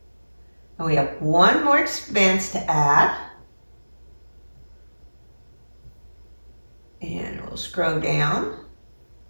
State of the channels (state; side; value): inverted; both; correlation -1.00